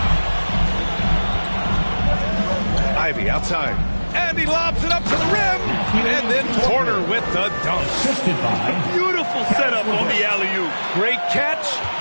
Ivy outside. And he lobs it up to the rim. And then Porter with the dunk. Beautiful setup on the alley-oop. Great catch,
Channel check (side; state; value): both; inverted; correlation -1.00